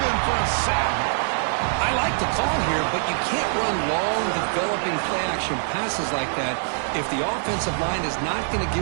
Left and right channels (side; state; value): left; silent; 62 dB below the other